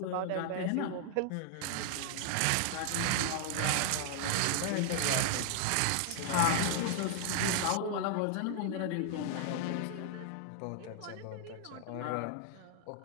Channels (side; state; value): both; different; correlation 0.00